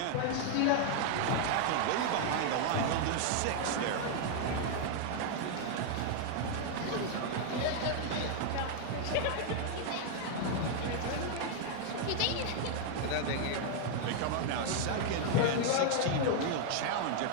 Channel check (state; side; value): different; both; correlation 0.00